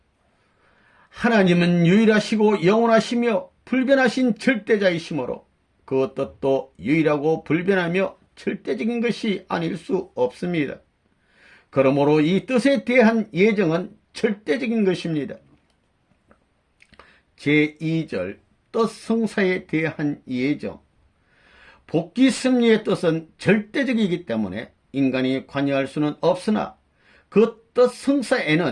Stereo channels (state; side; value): identical; both; correlation 1.00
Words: 하나님은 유일하시고 영원하시며 불변하신 절대자이시므로 그 뜻도 유일하고 불변하며 절대적인 것이 아닐 수 없습니다. 그러므로 이 뜻에 대한 예정은 절대적인 것입니다. 제2절 뜻 성사에 대한 예정. 복귀 섭리의 뜻은 절대적이기 때문에 인간이 관여할 수는 없으나 그 뜻